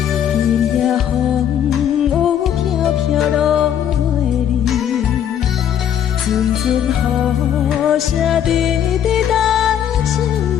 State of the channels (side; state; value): right; quieter; 9.5 dB